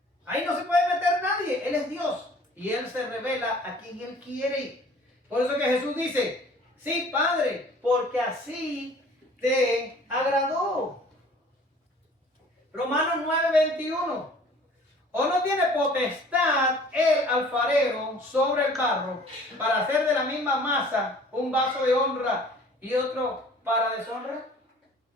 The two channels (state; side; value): normal; both; correlation 0.51